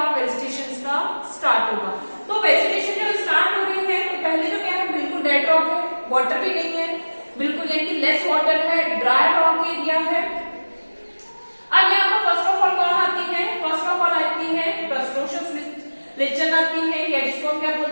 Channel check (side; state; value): both; inverted; correlation -1.00